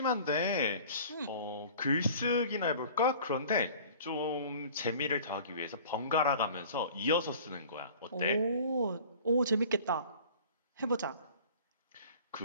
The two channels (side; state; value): both; inverted; correlation -0.46